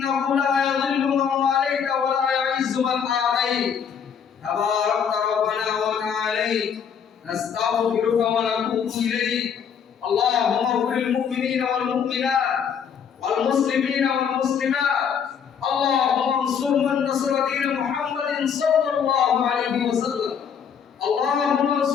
لا يضل من واليت ولا يعز من آتيت تبارك ربنا وتعالى نستغفرك ونتوب إليك اللهم اغفر للمؤمنين والمؤمنات والمسلمين والمسلمات اللهم انصر من نصر دين محمد صلى الله عليه وسلم اللهم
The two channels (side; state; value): right; quieter; 7.4 dB